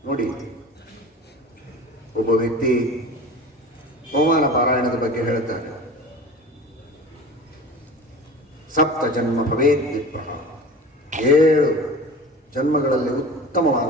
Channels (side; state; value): both; normal; correlation 0.36